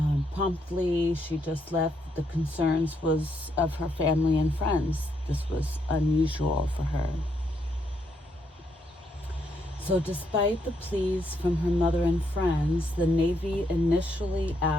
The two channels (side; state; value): both; normal; correlation 0.76